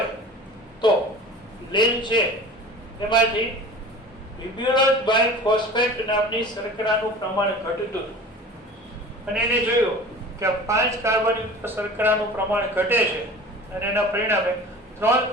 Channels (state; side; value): normal; both; correlation 0.39